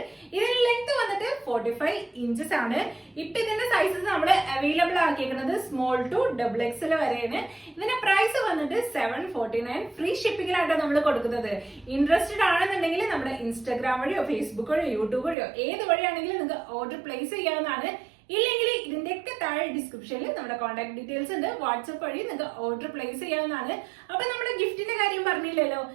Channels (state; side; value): drops out; left; at 15.4 s